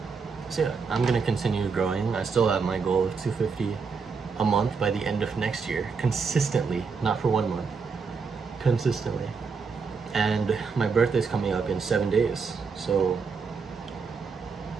So yeah, I'm gonna continue growing. I still have my goal of 250 a month by the end of next year, consistently, not for 1 month, consistently. And my birthday's coming up in 7 days, so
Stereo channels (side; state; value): left; quieter; 5.2 dB